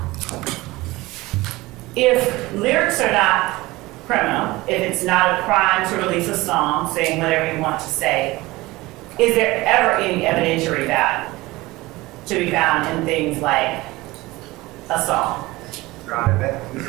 If lyrics are not criminal, if it's not a crime to release a song saying whatever you want to say, is there ever any evidentiary value to be found in things like a song? Your Honor, this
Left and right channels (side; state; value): left; quieter; 20.2 dB